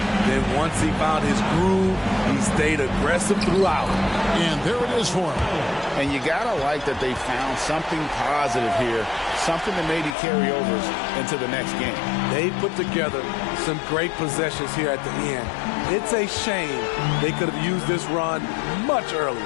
Then once he found his groove, he stayed aggressive throughout. And there it is for him. And you got to like that they found something positive here, something that maybe carry overs into the next game. They put together some great possessions here at the end. It's a shame they could have used this run much earlier.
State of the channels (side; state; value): right; drops out; at 10.2 s